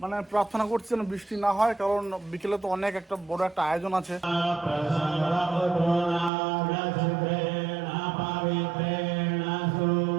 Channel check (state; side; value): drops out; left; at 6.3 s